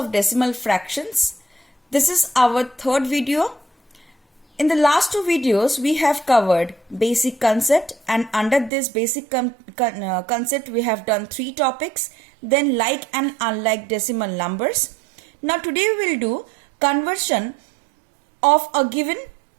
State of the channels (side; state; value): left; drops out; at 8.7 s